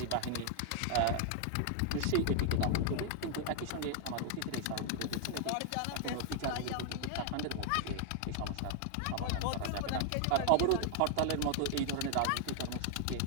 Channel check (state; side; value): different; both; correlation 0.00